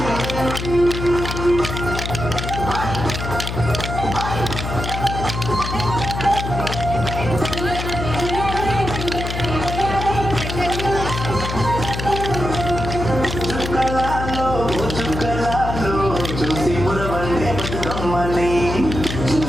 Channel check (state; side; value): noise; left; hum, 5 dB below the sound